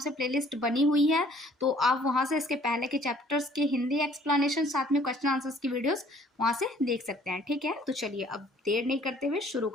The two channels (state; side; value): normal; both; correlation 0.57